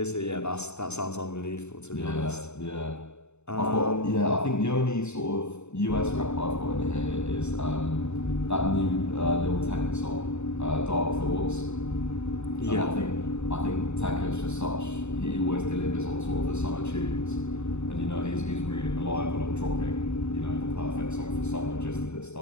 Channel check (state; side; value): late; right; 0.82 ms